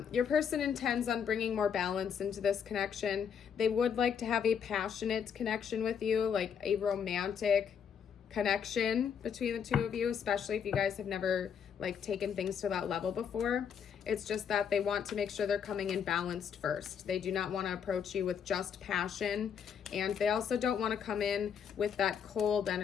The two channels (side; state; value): right; quieter; 7.6 dB